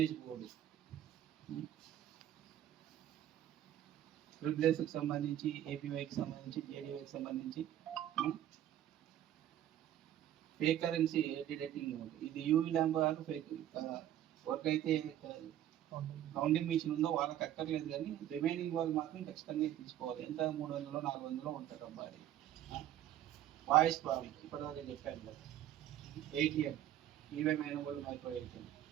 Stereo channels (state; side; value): quieter; left; 11.9 dB